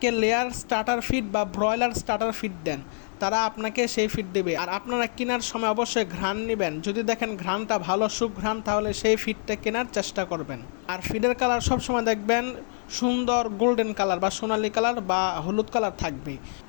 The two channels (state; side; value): silent; right; 57 dB below the other